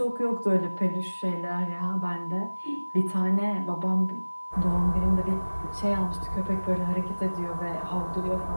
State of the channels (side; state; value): both; inverted; correlation -1.00